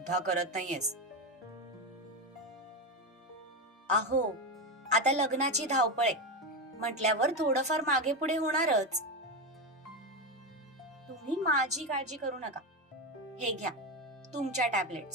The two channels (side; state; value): both; normal; correlation 0.14